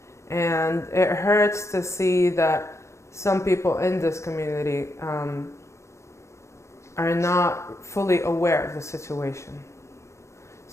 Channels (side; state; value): right; late; 0.14 ms